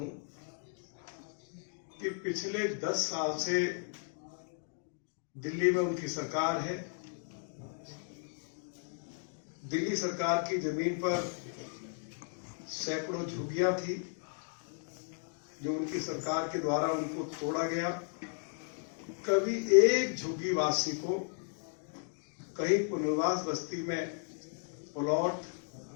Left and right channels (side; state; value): right; silent; 54 dB below the other